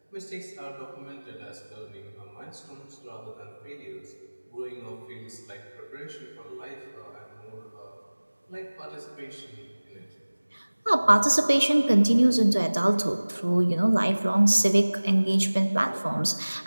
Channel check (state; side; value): inverted; both; correlation -1.00